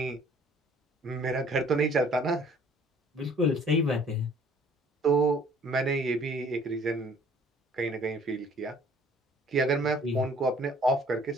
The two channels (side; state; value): both; normal; correlation 0.55